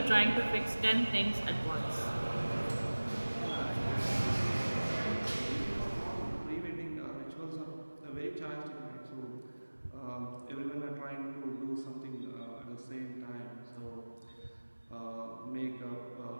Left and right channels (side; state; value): both; inverted; correlation -1.00